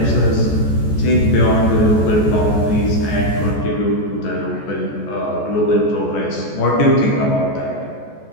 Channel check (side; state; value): right; late; 14 ms